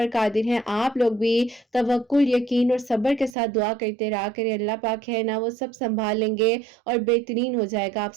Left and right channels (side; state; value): left; drops out; at 3.4 s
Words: قادر ہیں۔ آپ لوگ بھی توکل، یقین اور صبر کے ساتھ دعا کرتے رہا کریں، اللہ پاک ہے نا وہ سب سنبھال لیں گے اور بہترین ہو جائے گا آپ